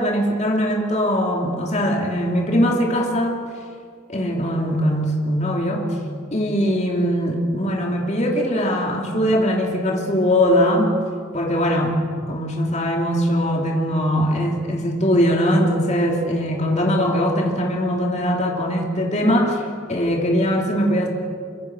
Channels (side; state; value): both; normal; correlation 0.56